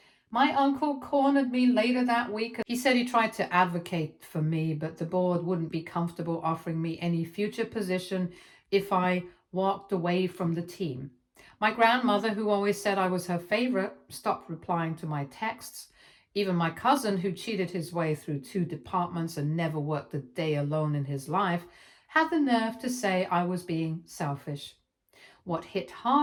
My uncle cornered me later that week. He said he tried to advocate for me, but the board wouldn't be comfortable offering me any future position if I walked away from the team. My grandmother, who always said I was her favorite, stopped replying to my texts. Even my cousin, who cheated his way through 2 departments and never worked a day alone in his life, had the nerve to say I was being selfish. What hit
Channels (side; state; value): both; identical; correlation 1.00